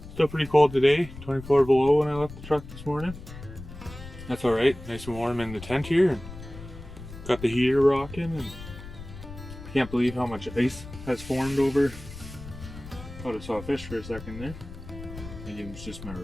Still pretty cold today, 24 below when I left the truck this morning. That's alright, nice and warm in the tent here. And got the heater rocking, and I can't believe how much ice has formed over. Thought I saw a fish for a second there. Maybe it was just my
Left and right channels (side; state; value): left; noise; rumble, 14 dB below the sound